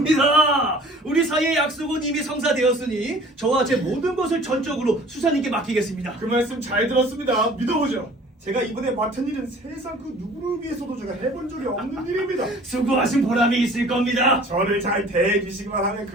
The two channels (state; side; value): normal; both; correlation 0.49